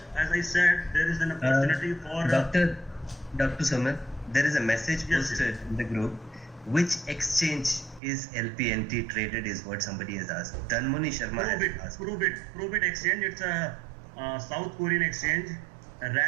as I said, there is an opportunity for Dr. Sumit, there is a message posted in the group. Which exchange is LPNT traded is what somebody has asked. Dhanmuni Sharma has asked. Probit Exchange. It's a South Korean exchange,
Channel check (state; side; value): drops out; left; at 8.0 s